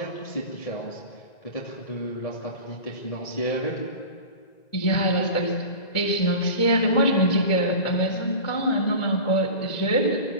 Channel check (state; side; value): late; right; 1.9 ms